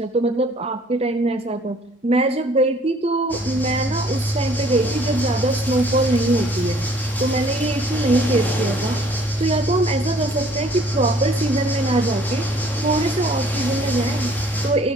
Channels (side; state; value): both; normal; correlation 0.57